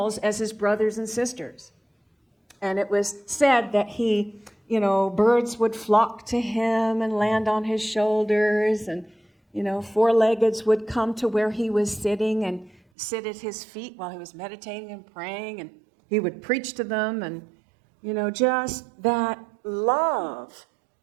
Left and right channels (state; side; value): drops out; left; at 12.8 s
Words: as his brothers and sisters. And it was said that birds would flock to him and land on his shoulders, and, four-leggeds would come to where he was sitting and sit at his feet while he was meditating and praying, and he would preach to them, and, just that love